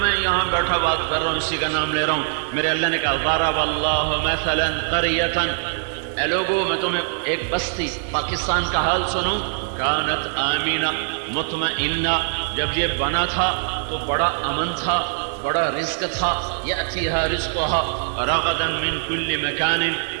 میں یہاں بیٹھا بات کر رہا ہوں اسی کا نام لے رہا ہوں۔ میرے اللہ نے کہا ضرب اللہ مثلا قریۃ، اے لوگو میں تمہیں ایک بستی پاکستان کا حال سنوں، کانت آمینہ مطمئنہ، جب یہ بنا تھا تو بڑا امن تھا، بڑا رزق تھا، یأتیہا رزقہا رغدا من کل مکان،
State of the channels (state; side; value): silent; left; digital silence